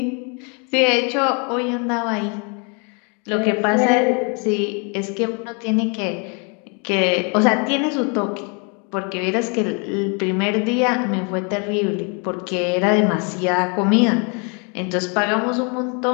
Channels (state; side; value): quieter; right; 35.5 dB